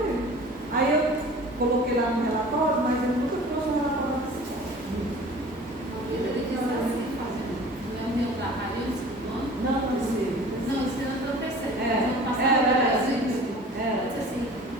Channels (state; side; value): normal; both; correlation 0.44